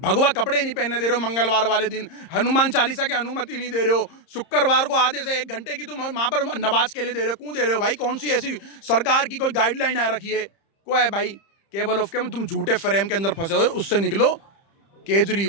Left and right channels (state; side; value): late; right; 30 ms